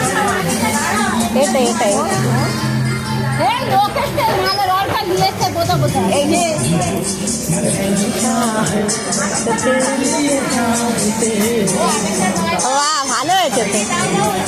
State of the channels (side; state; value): both; identical; correlation 1.00